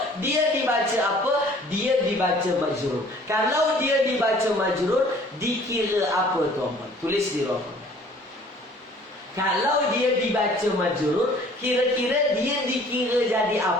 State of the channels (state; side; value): normal; both; correlation 0.53